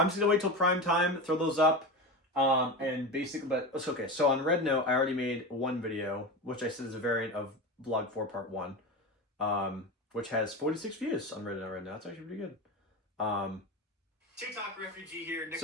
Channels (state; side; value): normal; both; correlation 0.24